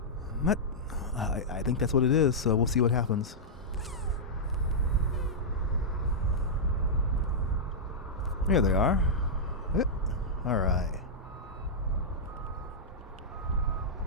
think that's what it is. So we'll see what happens. There they are. All right.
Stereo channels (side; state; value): both; normal; correlation -0.10